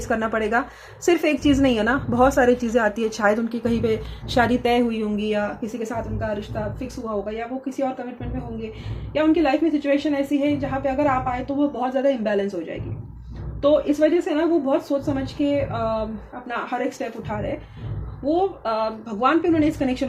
करना पड़ेगा। सिर्फ एक चीज़ नहीं है ना, बहुत सारी चीज़ें आती है। शायद उनकी कहीं पे शादी तय हुई होंगी, या किसी के साथ उनका रिश्ता फिक्स हुआ होगा, या वो किसी और कमिटमेंट में होंगे, या उनकी लाइफ में सिचुएशन ऐसी है जहाँ पे अगर आप आए तो वो बहुत ज़्यादा इम्बैलेंस हो जाएगी। तो इस वजह से ना वो बहुत सोच समझ के अपना हर एक स्टेप उठा रहे हैं। वो भगवान पे उन्होंने इस कनेक्शन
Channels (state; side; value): identical; both; correlation 1.00